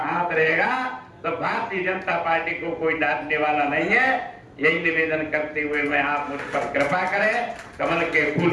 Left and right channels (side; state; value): both; identical; correlation 1.00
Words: रहेगा, तो भारतीय जनता पार्टी को कोई डांटने वाला नहीं है। यही निवेदन करते हुए मैं आप मुझ पर कृपा करें, कमल के फूल